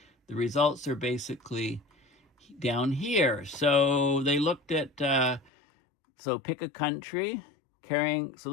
the results are basically down here. So they looked at, so pick a country so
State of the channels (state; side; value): drops out; right; at 5.5 s